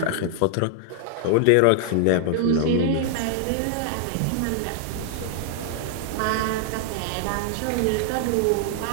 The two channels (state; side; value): different; both; correlation 0.00